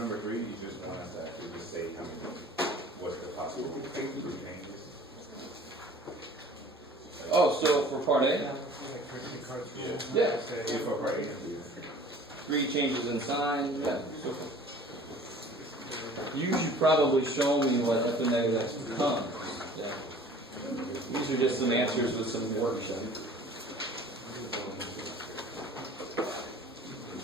3, you just want us to actually just say how many, what's the possible changes? Oh, so for part A? Yeah. For part A, 3 changes in sign. Yeah. So you should probably show me what f of negative x becomes. Yeah. These are just some answers with some worksheet.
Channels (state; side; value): normal; both; correlation 0.48